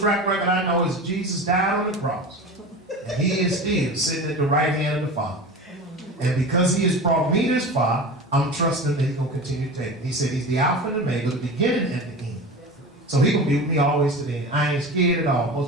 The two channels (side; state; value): both; normal; correlation 0.31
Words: record I know is Jesus died on the cross. And he is still sitting at the right hand of the Father. And because he has brought me this far, I'm trusting that he's going to continue to take me. He said he's the Alpha and the Omega, the beginning and the end. So he's going to be with me always to the end. I ain't scared at all.